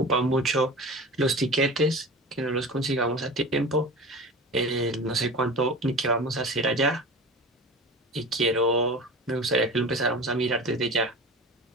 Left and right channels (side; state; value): both; normal; correlation 0.34